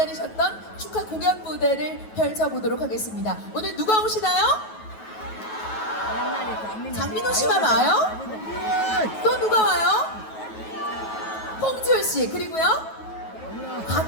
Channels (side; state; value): right; late; 9.3 ms